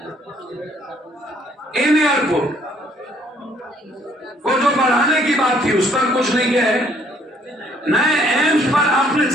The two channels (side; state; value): both; normal; correlation 0.64